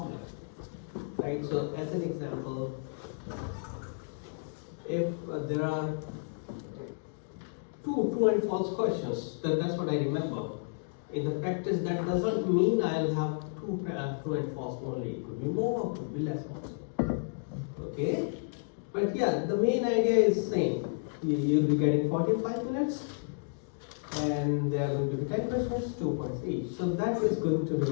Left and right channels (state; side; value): silent; right; digital silence